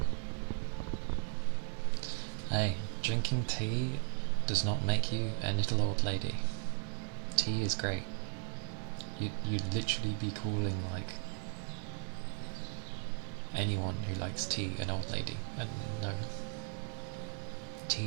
Hey, drinking tea does not make you a little old lady. Tea is great. You'd literally be calling like anyone who likes tea an old lady, and no.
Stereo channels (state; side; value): silent; left; 53 dB below the other